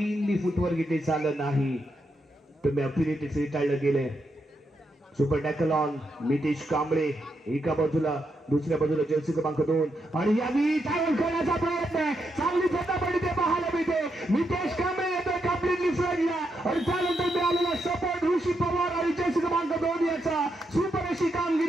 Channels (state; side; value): normal; both; correlation 0.82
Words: फुटवर्क इथे झालं नाही. तुम्ही अपील इथे फेटाळलं गेले. Super tackle on Nitesh Kamble एका बाजूला, दुसऱ्या बाजूला जर्सी क्रमांक 2 आणि यावेळी टॅकल करण्याचा प्रयत्न आहे. चांगली झटापट इथे पाहायला मिळते. नितेश कांबळे येतोय कम्प्लिटली फ्रंटला आणि त्यानंतर मिळालेला सपोर्ट ऋषी पवार आणि जर्सी क्रमांक 2 याचा सुपर अशी